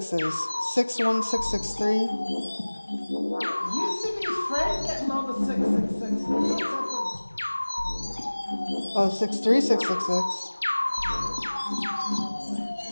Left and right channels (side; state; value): both; inverted; correlation -1.00